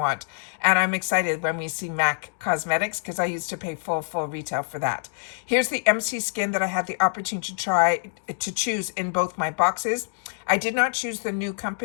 And I'm excited when we see MAC Cosmetics because I used to pay full retail for that. Here's the MC Skin that I had the opportunity to choose in both my boxes. I did not choose the new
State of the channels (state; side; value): silent; right; digital silence